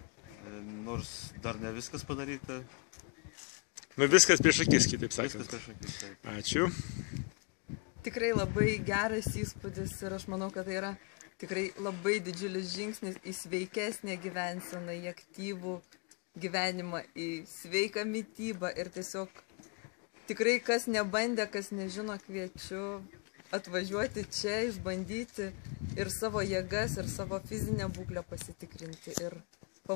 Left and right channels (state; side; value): quieter; right; 33.8 dB